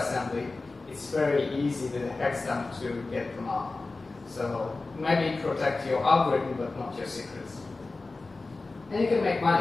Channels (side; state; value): right; quieter; 3.5 dB